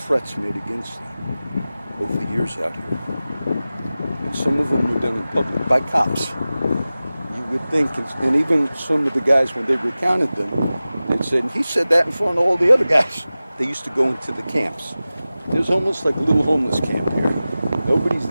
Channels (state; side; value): inverted; both; correlation -0.96